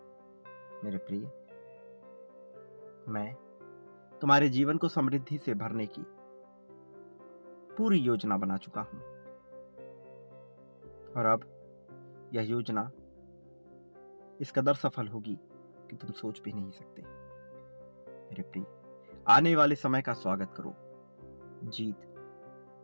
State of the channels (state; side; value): inverted; both; correlation -1.00